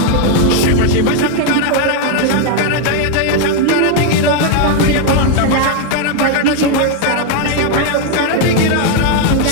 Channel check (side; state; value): both; different; correlation 0.00